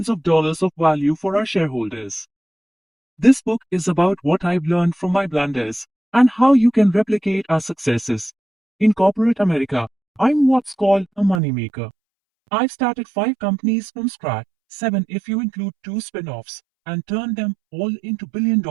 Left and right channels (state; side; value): drops out; left; at 11.4 s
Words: of dollars of value for our shareholders. This book is about what I've learned from my blunders and how you can replicate our successes. In corporate America, I'm what's called a moneymaker. I've started 5 companies from scratch, 7 if you include 2 spin-offs, and turned them all into